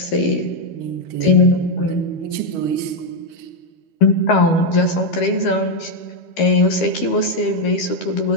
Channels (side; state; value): right; late; 12 ms